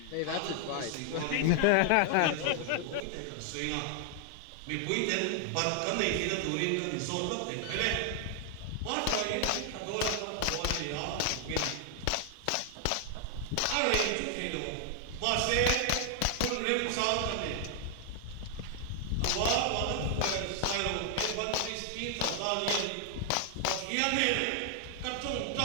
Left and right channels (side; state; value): both; different; correlation 0.00